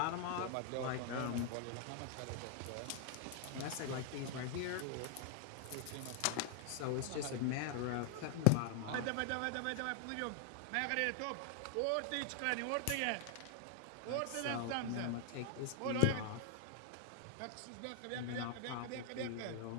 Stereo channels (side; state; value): both; different; correlation 0.00